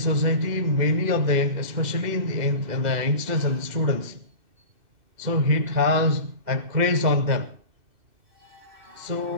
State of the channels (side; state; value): left; late; 2.6 ms